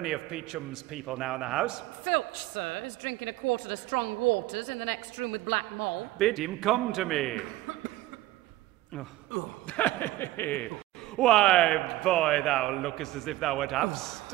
of Peachum's people now in the house? Filch, sir, is drinking a quarter of strong waters in the next room with Black Moll. Bid him come to me. Why, boy, thou lookest as if thou wert half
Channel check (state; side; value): quieter; left; 16.5 dB